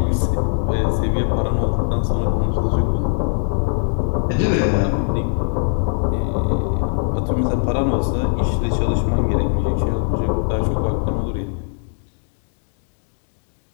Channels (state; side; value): silent; right; digital silence